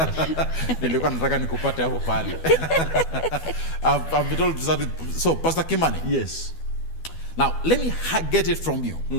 Nilikuwa nataka nikupate hapo pale. I've been told to start with. So, Pastor Kimani. Yes. Now, let me get it from you.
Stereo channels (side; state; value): right; late; 12 ms